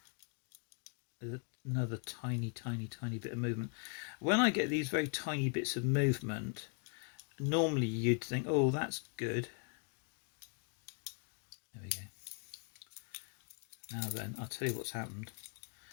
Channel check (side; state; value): right; quieter; 38.2 dB